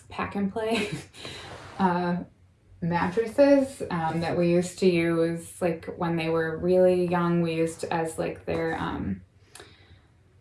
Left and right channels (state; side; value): identical; both; correlation 1.00